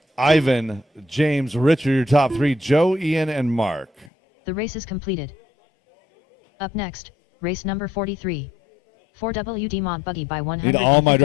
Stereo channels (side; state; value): right; drops out; at 4.1 s